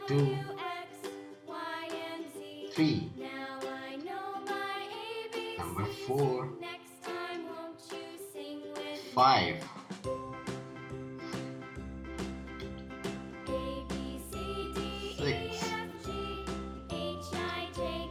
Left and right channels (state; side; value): identical; both; correlation 1.00